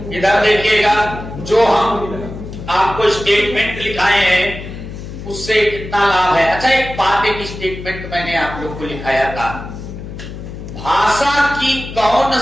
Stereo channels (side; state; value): left; noise; hum, 11 dB below the sound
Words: इधर देखिएगा, जो हम आपको स्टेटमेंट लिखाए हैं उससे कितना लाभ है। अच्छा एक बात, एक स्टेटमेंट मैंने आप लोग को लिखाया था, भाषा की कौन